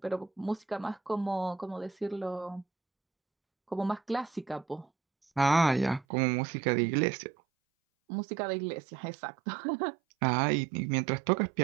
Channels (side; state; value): left; drops out; at 6.1 s